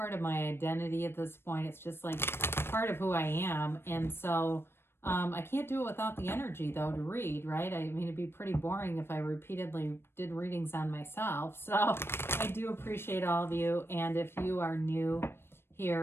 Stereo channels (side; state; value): right; late; 0.12 ms